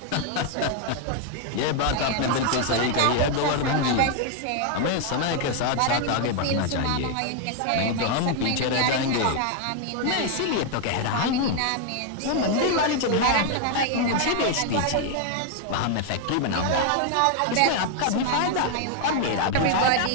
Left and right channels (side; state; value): both; different; correlation 0.00